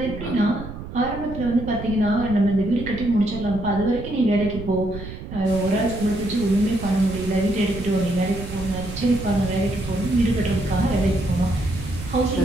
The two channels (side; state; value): right; noise; rumble, 10 dB below the sound